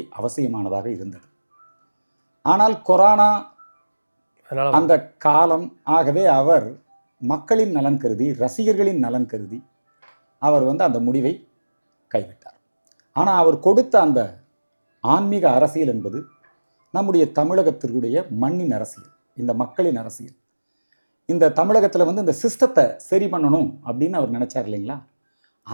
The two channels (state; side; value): inverted; both; correlation -1.00